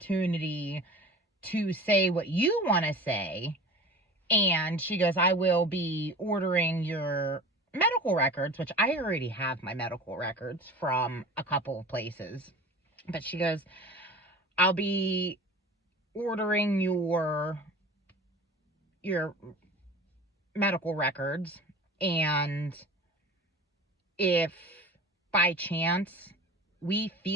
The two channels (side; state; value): both; normal; correlation 0.38